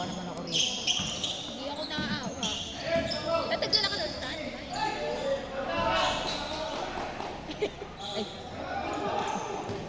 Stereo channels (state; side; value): identical; both; correlation 1.00